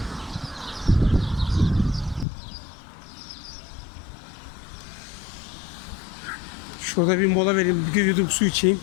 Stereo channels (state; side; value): drops out; right; at 2.2 s